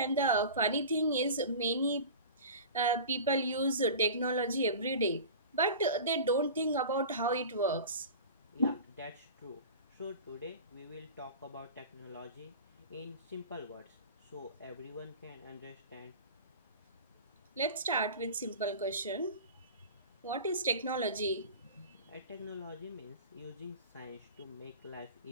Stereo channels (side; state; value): both; inverted; correlation -0.35